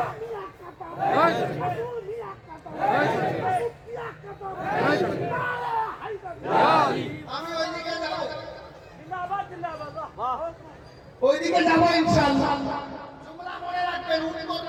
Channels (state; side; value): identical; both; correlation 1.00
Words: Right! Right! ওইদিকে যাবো ইনশাআল্লাহ। তোমরা মনে রাখবেন, উত্তর